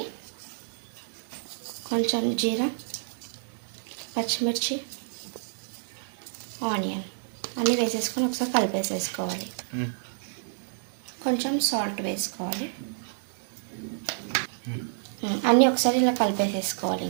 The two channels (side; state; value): left; silent; 59 dB below the other